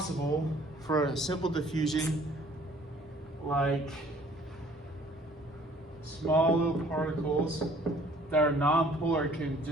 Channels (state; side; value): normal; both; correlation 0.56